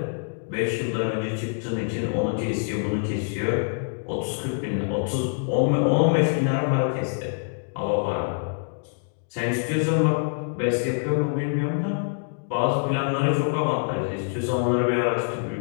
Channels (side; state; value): right; silent; digital silence